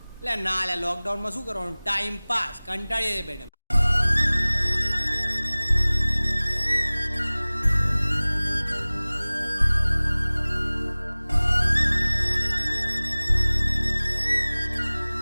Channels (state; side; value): inverted; both; correlation -1.00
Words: લે ના લે, લોકડાઉનમાં શું કરવાનું, ટાઈમ પાસ, કંટાળીએ બેઠા.